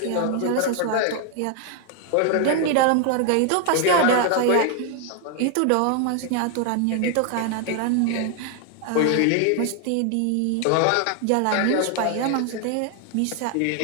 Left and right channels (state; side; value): different; both; correlation 0.00